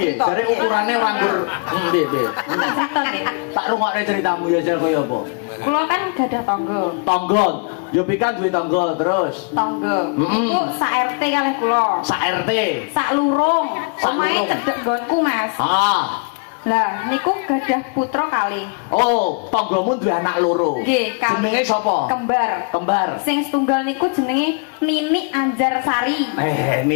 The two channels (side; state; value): right; quieter; 36.8 dB